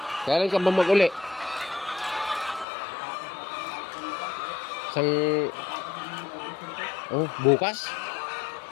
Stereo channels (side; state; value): right; drops out; at 2.7 s